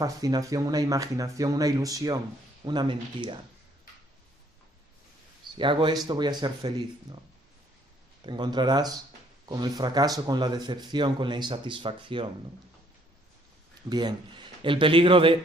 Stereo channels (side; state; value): both; normal; correlation 0.64